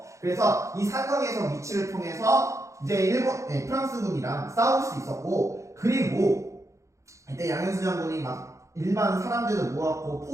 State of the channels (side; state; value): left; late; 0.15 ms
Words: 그래서 이 산성에서 위치를 통해서 이제 프랑스군이랑 싸울 수 있었고 그리고 이때 양현수 장군이 막 일반 사람들을 모았고